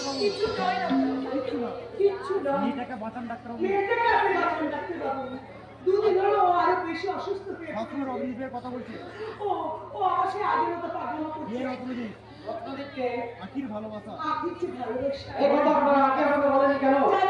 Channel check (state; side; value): identical; both; correlation 1.00